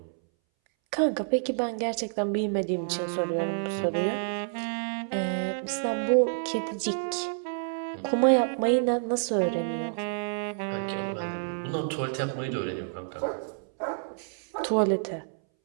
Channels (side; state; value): left; silent; 59 dB below the other